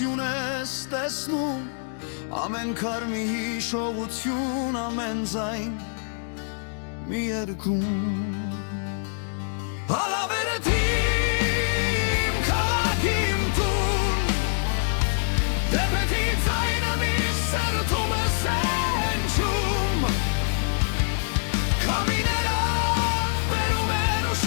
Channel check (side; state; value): right; silent; digital silence